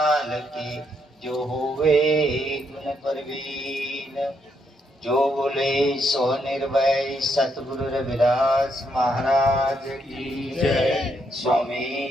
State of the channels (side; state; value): both; normal; correlation 0.76